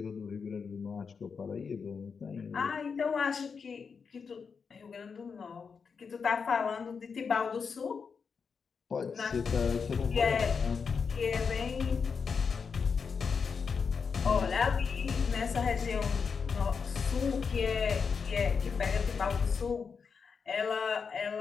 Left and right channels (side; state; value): right; quieter; 5.7 dB